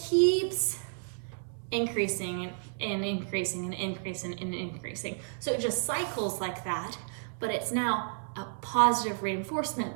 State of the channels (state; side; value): silent; left; 57 dB below the other